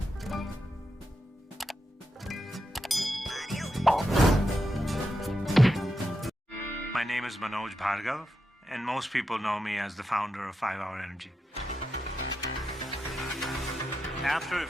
My name is Manoj Bhargav, and most people know me as the founder of 5 Hour Energy. After a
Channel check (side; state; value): both; normal; correlation 0.86